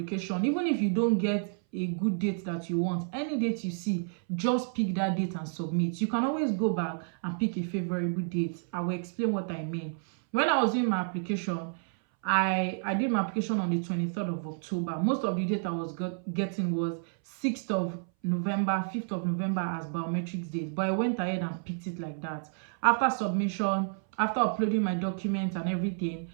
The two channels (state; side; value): silent; left; 58 dB below the other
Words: even if you don't get a good date that you want, any date you see, just pick that date and submit. You can always go back and pick a favorable date. I will explain what I mean. When I was doing my application, I did my application on the 23rd of October. Most of the data I was getting was 6th of November, 5th of November as biometrics date. But I went ahead and picked it like that. After submission, after uploading my documents and everything,